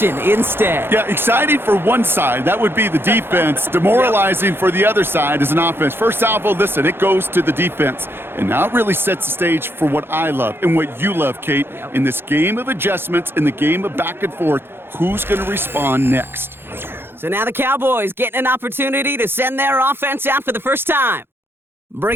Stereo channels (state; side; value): late; left; 0.11 ms